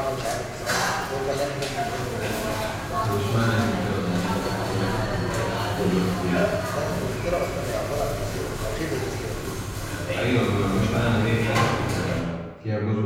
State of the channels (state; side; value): identical; both; correlation 1.00